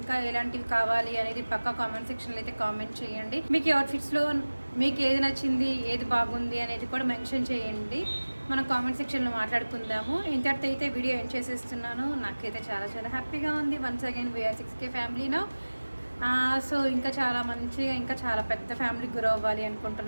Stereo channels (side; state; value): both; inverted; correlation -1.00